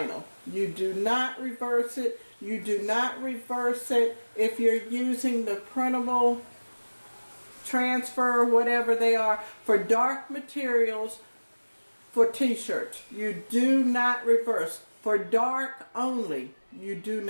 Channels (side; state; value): both; inverted; correlation -1.00